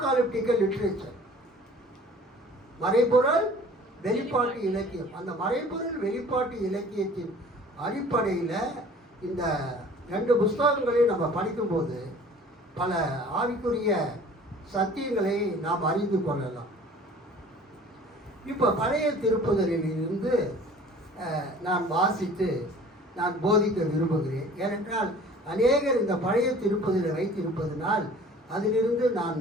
லிட்ரேச்சர், மறைபொருள் வெளிப்பாட்டு இலக்கியம். அந்த மறைபொருள் வெளிப்பாட்டு இலக்கியத்தின் அடிப்படையில் இந்த 2 புஸ்தகங்களையும் நம்ம படிக்கும்போது பல ஆவிக்குரிய சத்தியங்களை நாம் அறிந்து கொள்ளலாம். இப்போ பழைய திருப்புதலிலிருந்து நான் வாசித்து நான் போதிக்க விரும்புகிறேன். ஏனென்றால் அநேகர் இந்த பழைய திருப்புதலை வைத்திருப்பதனால் அதிலிருந்து நான்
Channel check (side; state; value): both; normal; correlation 0.48